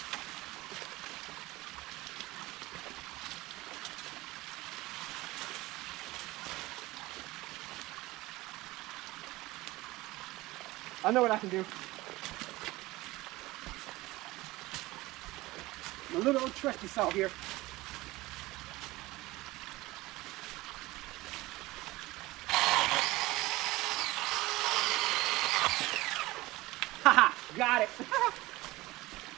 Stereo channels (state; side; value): quieter; left; 19.6 dB